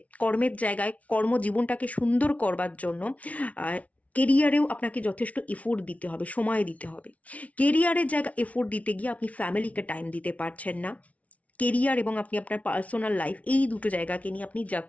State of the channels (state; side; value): late; right; 0.067 ms